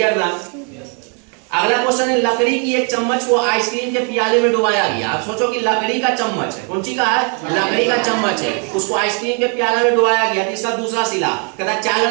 ना? अगला क्वेश्चन है, लकड़ी की एक चम्मच को आइसक्रीम के प्याले में डुबाया गया। आप सोचो कि लकड़ी का चम्मच है, कौन सी का है, लकड़ी का चम्मच है, उसको आइसक्रीम के प्याले में डुबाया गया। इसका दूसरा सिला कहता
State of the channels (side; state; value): left; quieter; 38.5 dB